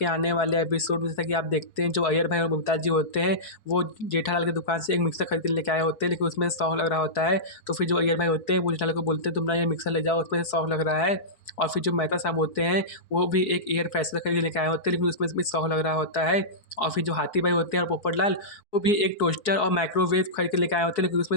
आने वाले एपिसोड में जैसा कि आप देखते हैं, जो अय्यर भाई और मुमताज जी होते हैं, वो जेठालाल की दुकान से एक मिक्सर खरीद के लेके आए होते हैं, लेकिन उसमें सौंफ लग रहा होता है। तो फिर जो अय्यर भाई होते हैं वो जेठालाल को बोलते हैं, तुम ना ये मिक्सर ले जाओ, उसमें सौंफ लग रहा है। और फिर जो मेहता साहब होते हैं, वो भी एक एयर फ्रेशनर खरीद के लेके आए होते हैं, लेकिन उसमें भी सौंफ लग रहा होता है। और फिर जो हाथी भाई होते हैं और पोपटलाल, वो भी एक टोस्टर और माइक्रोवेव खरीद के लेके आए होते हैं, लेकिन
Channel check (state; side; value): late; right; 4.7 ms